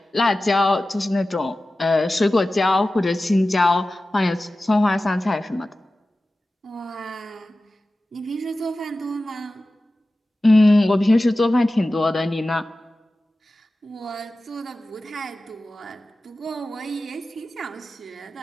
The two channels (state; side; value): normal; both; correlation 0.95